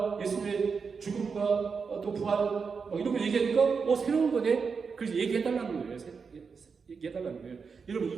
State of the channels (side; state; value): left; quieter; 5.4 dB